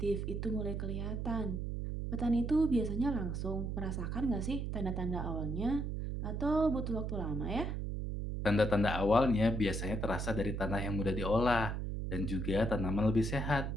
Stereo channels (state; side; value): noise; right; hum, 2 dB below the sound